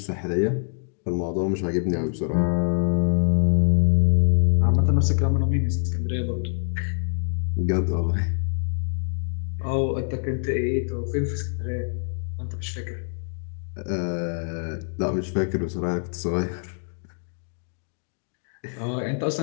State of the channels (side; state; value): right; silent; digital silence